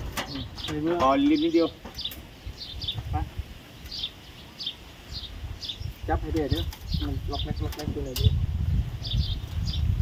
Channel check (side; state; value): both; identical; correlation 1.00